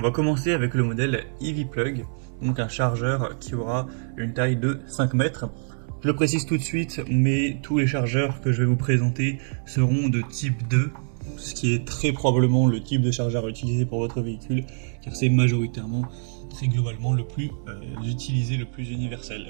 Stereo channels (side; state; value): left; silent; 60 dB below the other